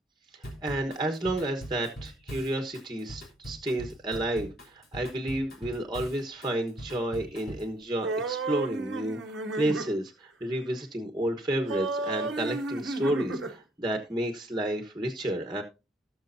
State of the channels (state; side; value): normal; both; correlation 0.67